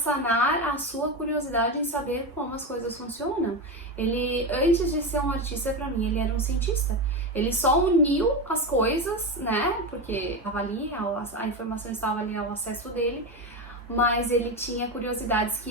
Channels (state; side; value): normal; both; correlation 0.17